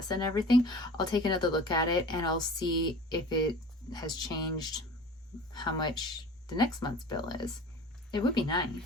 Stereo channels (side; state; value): both; normal; correlation 0.41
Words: and everything, I'll take another look at it and I'll see if it has changed, how much the next month's bill is. It would be